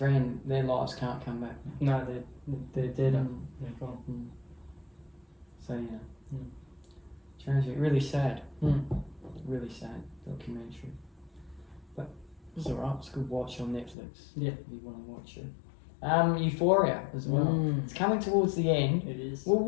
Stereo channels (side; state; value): right; drops out; at 14.0 s